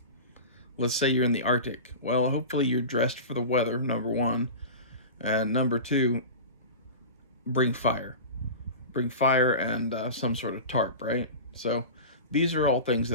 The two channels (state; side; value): inverted; both; correlation -0.30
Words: Let's say you're in the Arctic. Well, hopefully you're dressed for the weather, number one. And number two, bring fire. Bring fire and some sort of tarp, right? So these are all things